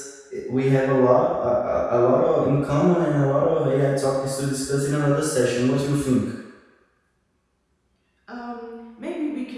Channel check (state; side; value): identical; both; correlation 1.00